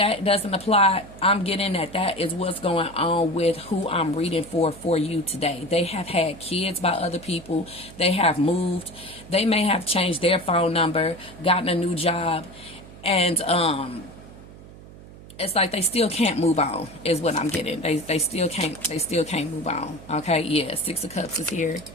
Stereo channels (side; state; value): right; noise; hum, 18 dB below the sound